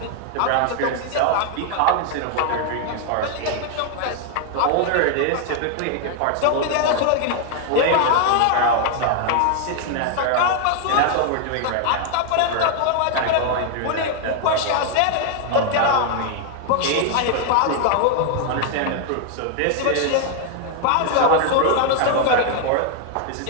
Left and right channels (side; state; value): both; different; correlation 0.00